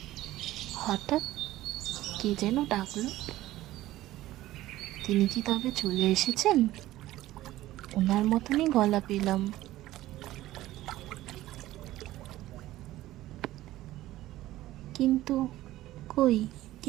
হঠাৎ কে যেন ডাকলো। তিনি কি তবে চলে এসেছেন? ওনার মতনই গলা পেলাম। কিন্তু কই,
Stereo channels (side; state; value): left; quieter; 15.7 dB